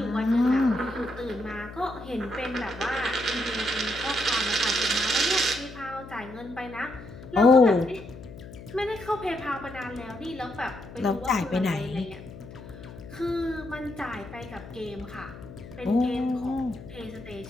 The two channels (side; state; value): left; noise; hum, 15 dB below the sound